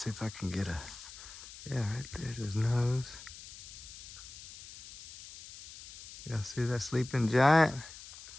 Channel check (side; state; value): left; noise; hiss, 15 dB below the sound